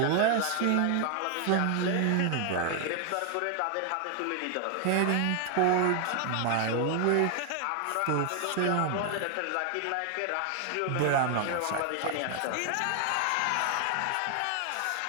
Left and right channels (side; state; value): both; different; correlation 0.00